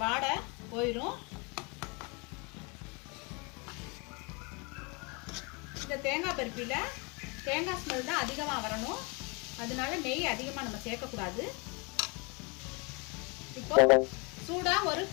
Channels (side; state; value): right; quieter; 30.8 dB